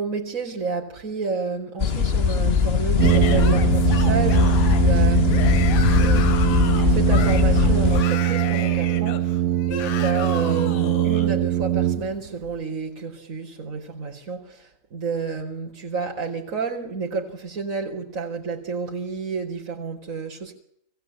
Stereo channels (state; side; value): late; left; 2.9 ms